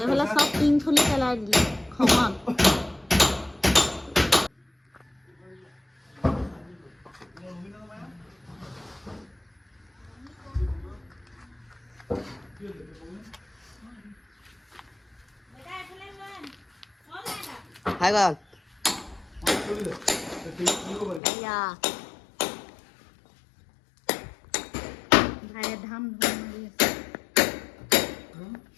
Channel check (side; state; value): right; drops out; at 21.2 s